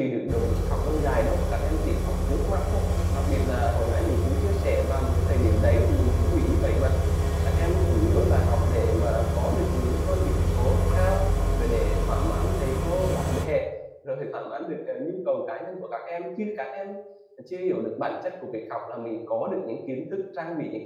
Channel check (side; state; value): both; identical; correlation 1.00